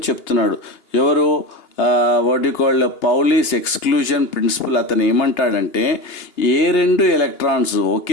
చెప్తున్నాడు ఎవరు, what you called Pauli's exclusion principle. అతను ఏమంటాడంటే ఏ 2 ఎలక్ట్రాన్స్,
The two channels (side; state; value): right; late; 2.8 ms